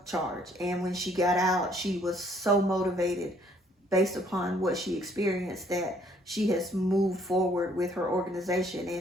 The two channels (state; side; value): normal; both; correlation 0.63